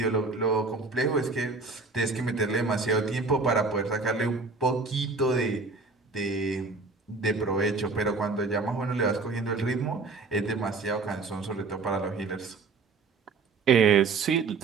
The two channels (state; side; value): quieter; left; 4.1 dB